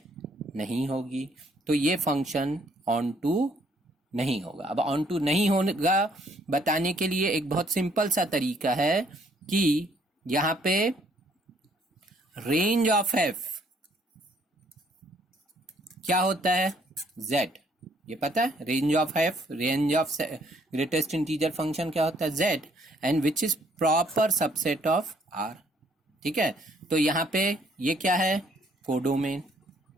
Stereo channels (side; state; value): both; normal; correlation 0.65